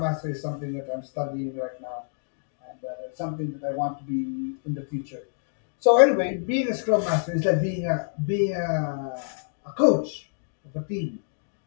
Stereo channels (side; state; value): right; silent; digital silence